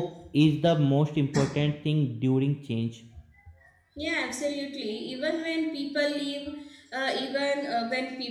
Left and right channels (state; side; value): identical; both; correlation 1.00